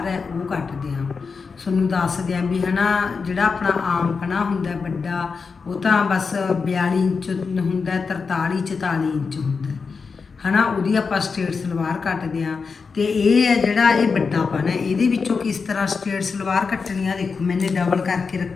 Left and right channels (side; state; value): right; quieter; 5.0 dB